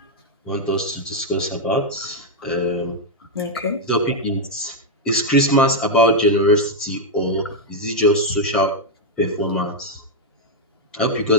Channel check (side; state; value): both; normal; correlation -0.01